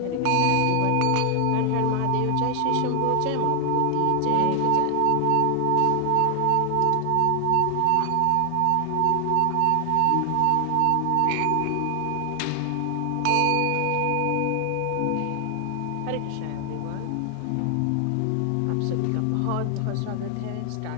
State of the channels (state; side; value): different; both; correlation 0.00